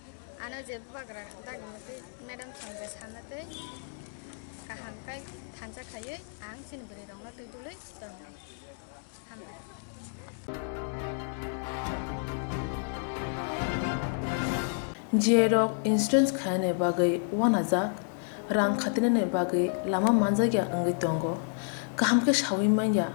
आनो जे बाग्रा दागमते मैडम संगे सानते गाहामखाय थानसा खायो आं sini beri rong बिदिलै दंनाय हामबाय Jerok instance khane bagai wanajak rang khatinane bagai lama manjagya angai tongo kaham ke shawi manya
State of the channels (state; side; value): silent; right; digital silence